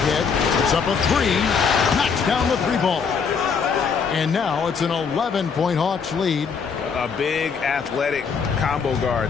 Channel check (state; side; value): quieter; right; 5.9 dB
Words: It's up a 3. Knocks down the 3-ball. And now it's an 11-point Hawks lead. A big athletic combo